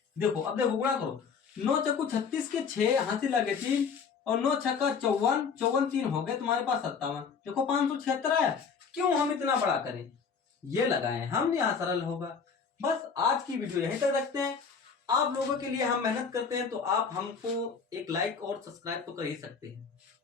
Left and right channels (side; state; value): right; quieter; 5.8 dB